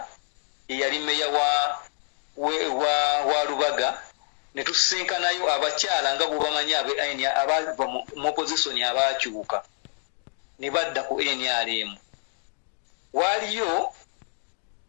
eyali mmeya wa Lubaga. Ne tusisinkanayo abakyala nga bwebamanyi abava mu opozisoni abaakyuka ne badda ku NRM. Waaliyo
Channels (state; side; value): silent; right; 60 dB below the other